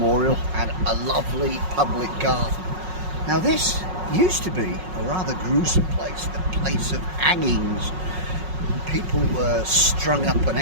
and a lovely public garden. Now this used to be a rather gruesome place, the place of hangings. People were strung up and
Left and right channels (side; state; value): left; late; 5.4 ms